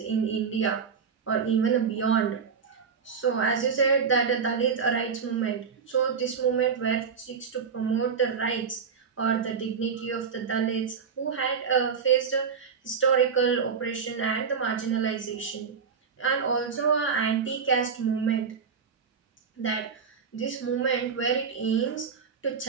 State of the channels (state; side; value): quieter; left; 6.1 dB